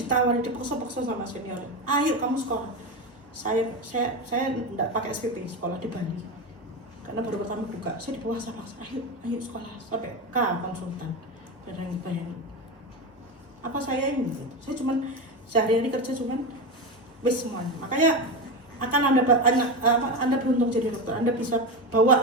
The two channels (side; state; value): both; normal; correlation 0.18